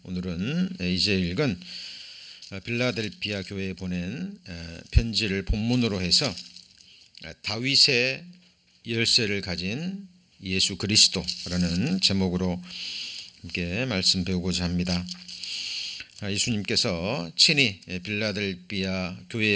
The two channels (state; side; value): identical; both; correlation 1.00